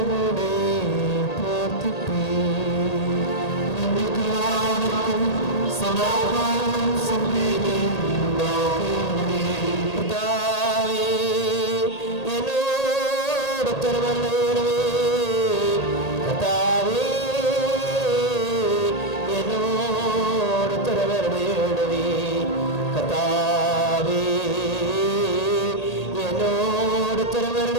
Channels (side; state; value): right; late; 1.8 ms